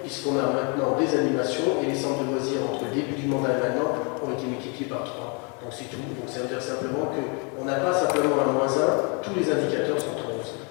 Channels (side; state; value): right; quieter; 34.0 dB